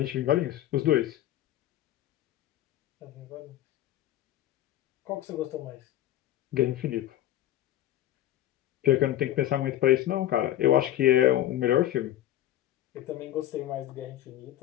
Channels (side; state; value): right; quieter; 13.2 dB